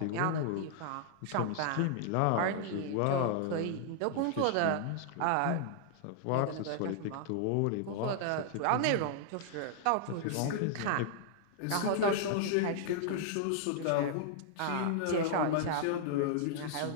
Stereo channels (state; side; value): different; both; correlation -0.01